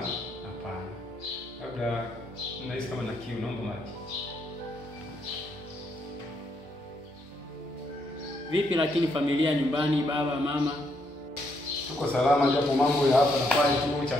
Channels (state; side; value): normal; both; correlation 0.75